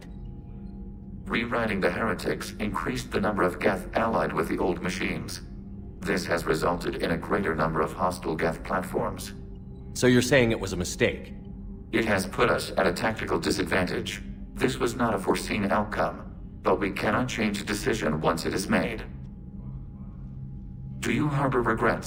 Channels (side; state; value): both; identical; correlation 1.00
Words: Rewriting the heretics increased the number of Geth allied with the old machines. This has resulted in a greater number of hostile Geth platforms. So you're saying it was a mistake? It has put us at a tactical disadvantage. This was not a foreseen outcome, but we cannot change a decision once it is made. Do you harbor